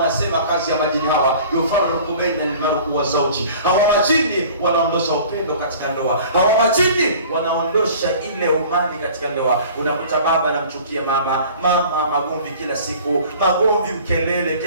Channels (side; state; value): both; inverted; correlation -0.46